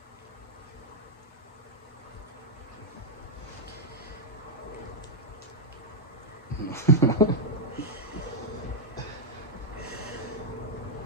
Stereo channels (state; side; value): normal; both; correlation -0.03